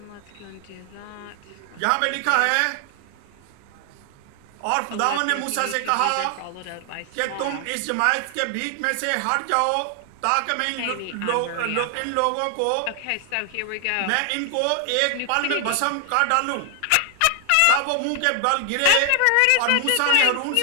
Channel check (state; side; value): different; both; correlation 0.00